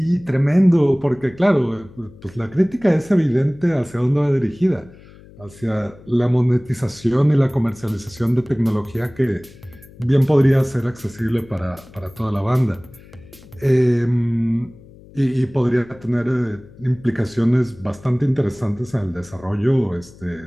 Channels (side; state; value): left; noise; hum, 22 dB below the sound